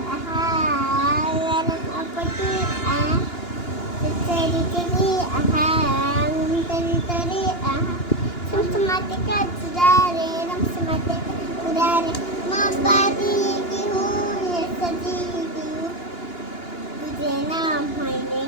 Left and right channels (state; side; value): late; right; 2.9 ms